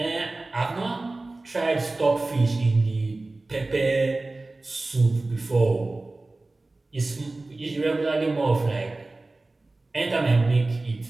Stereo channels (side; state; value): left; quieter; 3.1 dB